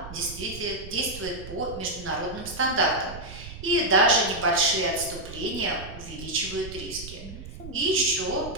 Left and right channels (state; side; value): noise; right; rumble, 13 dB below the sound